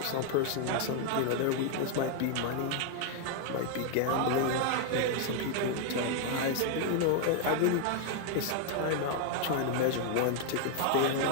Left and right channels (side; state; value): both; different; correlation 0.00